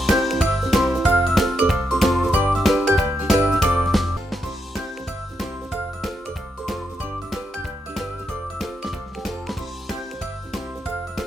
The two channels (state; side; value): normal; both; correlation 0.82